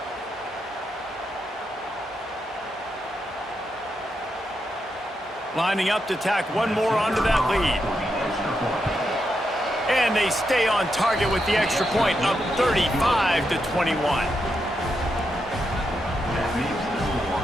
Lining up to tack one more onto that lead. And they stay on target with the extra point, up 35-21.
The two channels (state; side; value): normal; both; correlation 0.83